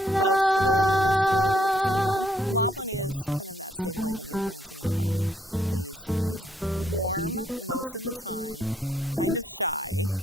both stability and instability at the same time. Lofflin is kind of that stabilizing influence in the department. He's warm most of the time, kind of shy,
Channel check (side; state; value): both; normal; correlation 0.71